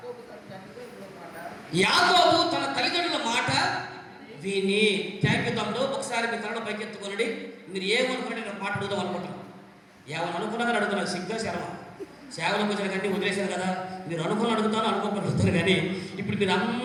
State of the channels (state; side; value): identical; both; correlation 1.00